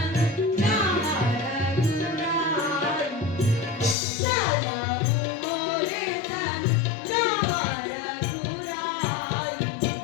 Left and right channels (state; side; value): drops out; right; at 4.0 s